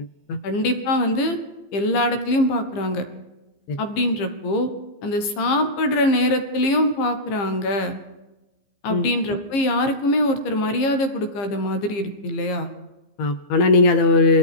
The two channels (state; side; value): late; right; 15 ms